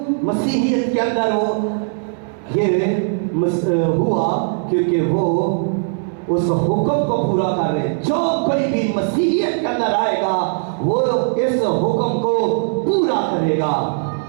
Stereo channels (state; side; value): silent; left; 63 dB below the other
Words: मसीहियत के अंदर वो ये हुआ? क्योंकि वो उस हुक्म को पूरा कर रहे। जो कोई भी मसीहियत के अंदर आएगा वो इस हुक्म को पूरा करेगा